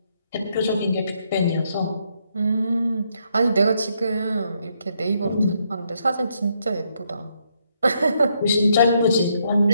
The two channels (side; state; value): both; inverted; correlation -0.75